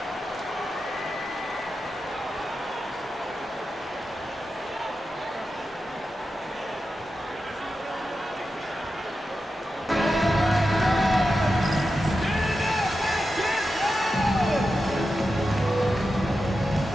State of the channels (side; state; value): both; normal; correlation 0.90